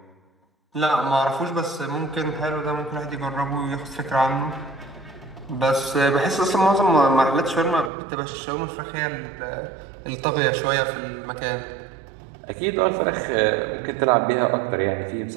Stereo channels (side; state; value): left; drops out; at 7.9 s